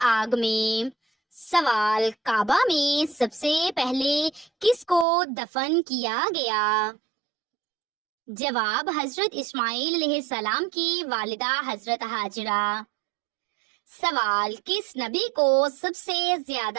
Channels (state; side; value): drops out; left; at 5.1 s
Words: آگ میں۔ سوال: کعبہ میں سب سے پہلے کس کو دفن کیا گیا؟ جواب: حضرت اسماعیل علیہ السلام کی والدہ حضرت ہاجرہ۔ سوال: کس نبی کو سب سے